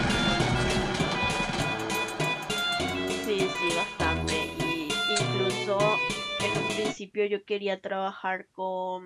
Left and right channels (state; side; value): identical; both; correlation 1.00